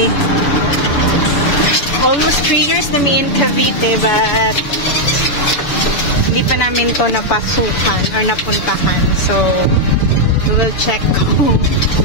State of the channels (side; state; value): right; late; 6.9 ms